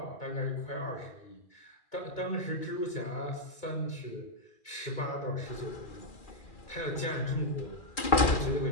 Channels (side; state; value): right; late; 2.4 ms